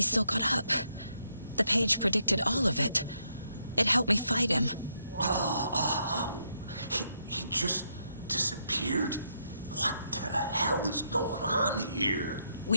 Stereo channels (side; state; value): both; inverted; correlation -0.77